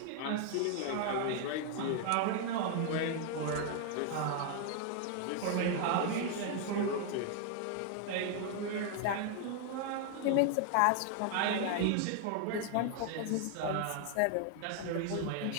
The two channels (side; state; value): both; different; correlation 0.00